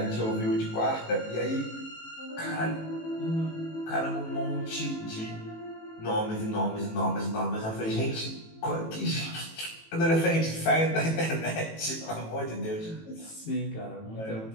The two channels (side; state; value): right; late; 18 ms